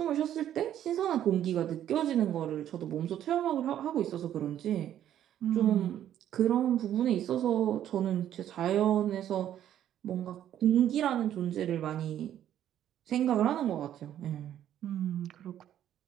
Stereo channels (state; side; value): quieter; left; 11.1 dB